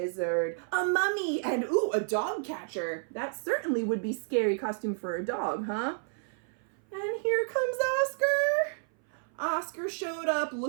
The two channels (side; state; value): left; silent; 57 dB below the other